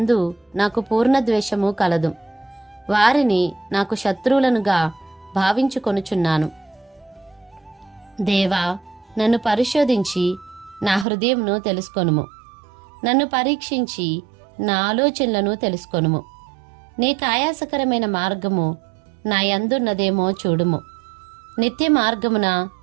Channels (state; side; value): drops out; left; at 11.1 s